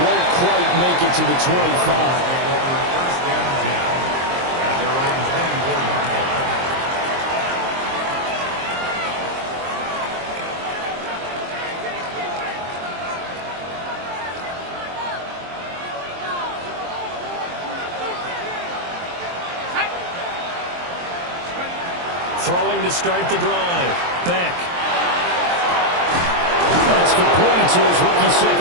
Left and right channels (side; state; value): left; late; 23 ms